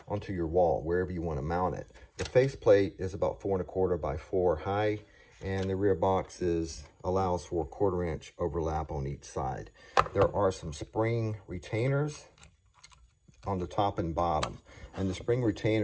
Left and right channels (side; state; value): both; identical; correlation 1.00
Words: onto your wall, wherever you want to mount it. The faceplate is about 4¼ by 4 high, and the rear box allows for a 1/4 inch overlap on each side. There are some spring retainers on the top and bottom, and the spring